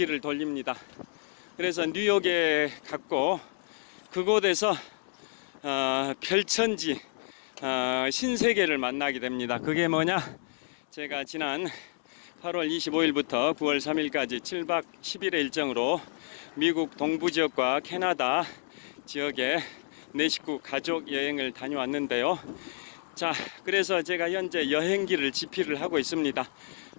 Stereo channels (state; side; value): silent; right; 58 dB below the other